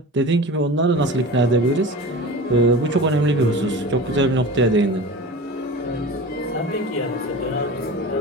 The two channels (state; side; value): normal; both; correlation 0.33